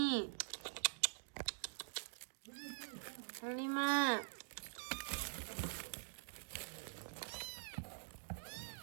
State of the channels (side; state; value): left; silent; digital silence